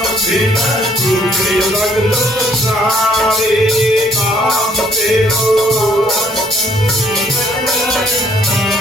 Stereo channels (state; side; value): normal; both; correlation 0.65